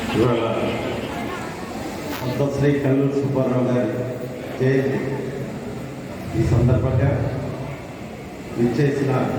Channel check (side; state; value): both; identical; correlation 1.00